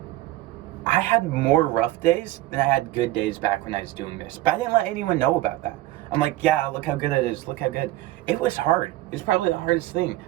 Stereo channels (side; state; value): left; quieter; 16.4 dB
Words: I had more rough days than I had good days back when I was doing this. But I didn't let anyone know about that. I'm like, yeah, look how good it is. Look how good. It was hard. It was probably the hardest thing.